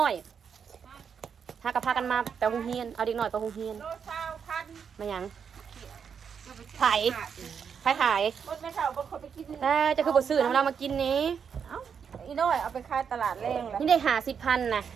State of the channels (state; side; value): quieter; left; 6.9 dB